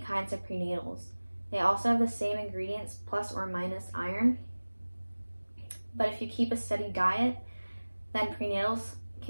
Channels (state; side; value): inverted; both; correlation -1.00